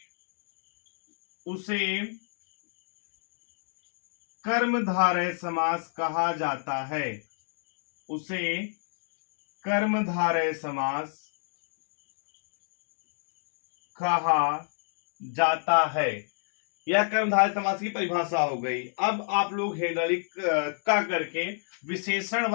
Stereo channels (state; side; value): silent; right; digital silence